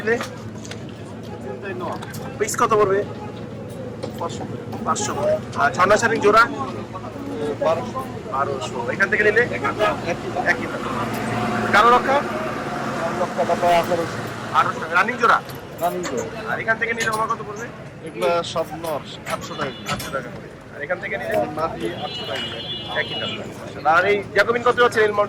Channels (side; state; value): both; identical; correlation 1.00